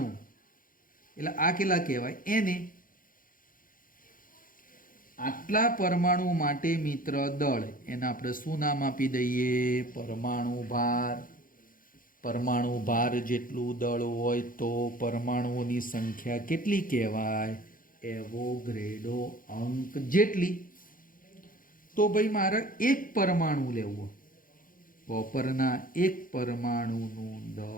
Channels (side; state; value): right; late; 0.40 ms